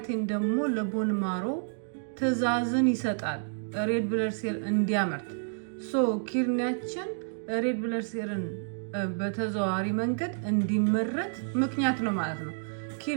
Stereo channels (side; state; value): left; silent; digital silence